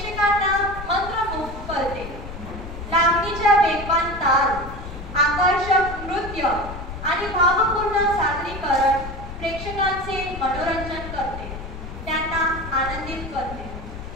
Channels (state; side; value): noise; left; rumble, 10 dB below the sound